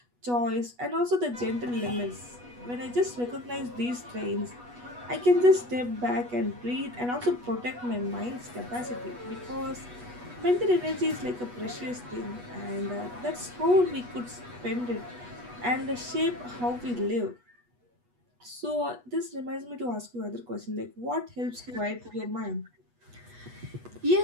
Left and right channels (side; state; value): left; late; 8.2 ms